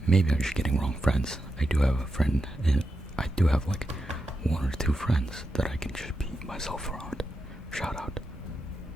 Maybe I'm just getting wrong friends. I do have a friend, and I do have like one or two friends that I can just be myself around. Shout out.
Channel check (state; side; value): normal; both; correlation 0.87